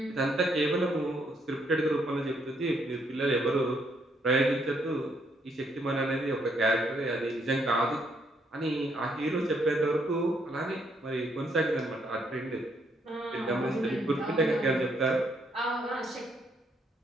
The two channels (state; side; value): normal; both; correlation 0.72